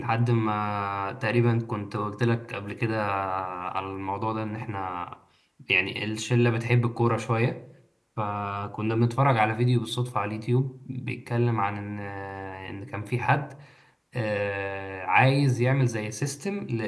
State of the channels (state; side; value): identical; both; correlation 1.00